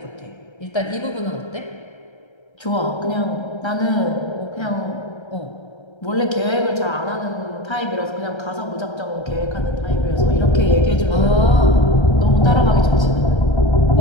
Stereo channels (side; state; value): right; late; 1.3 ms